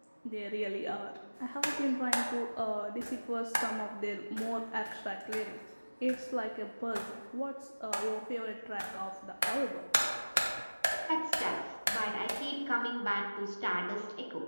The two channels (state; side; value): inverted; both; correlation -1.00